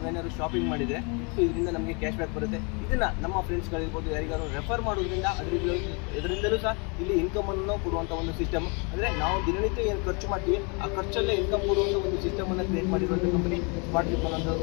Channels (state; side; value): quieter; right; 33.3 dB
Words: ಶಾಪಿಂಗ್ ಮಾಡಿದರೆ ಸೊ ಇದರಿಂದ ನಮಗೆ ಕ್ಯಾಶ್ ಬ್ಯಾಕ್ ಬರುತ್ತೆ. ಇದನ್ನು ನಮ್ಮ ಫ್ರೆಂಡ್ಸ್ಗಳಿರ್ಬೋದು ಯಾರಿಗಾರು ರೆಫರ್ ಮಾಡೋದ್ರಿಂದ ಇದರಿಂದಲೂ ಸಹ ಇಲ್ಲಿ ಇನ್ಕಮನ್ನು ಕೊಡುವಂಥ ಒಂದು ಸಿಸ್ಟಮ್. ಅಂದರೆ ನಾವು ದಿನನಿತ್ಯ ಏನು ಖರ್ಚು ಮಾಡ್ತೀವಿ ಆ ಖರ್ಚಲ್ಲೇ ಇನ್ಕಮ್ ಕೊಡುವಂಥ ಒಂದು ಸಿಸ್ಟಮನ್ನು ಕ್ರಿಯೇಟ್ ಮಾಡಿರುವಂಥ ಕಂಪನಿ ಸ್ಮಾರ್ಟ್ ವೀಕ್ ಅನ್ನೋ